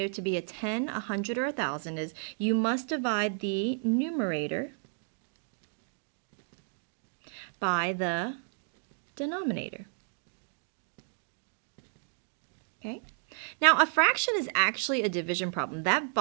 to be a 10, a 100, or a 1,000 is you must divide the numerator by the denominator. Okay? Now, a fraction is actually a division problem. That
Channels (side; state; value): left; silent; 56 dB below the other